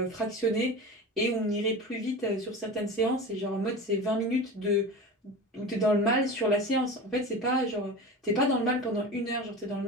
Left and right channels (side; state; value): both; normal; correlation 0.30